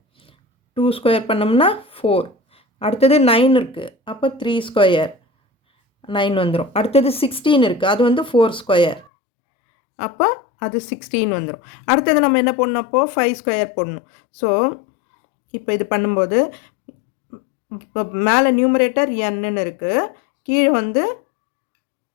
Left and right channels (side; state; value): right; drops out; at 9.1 s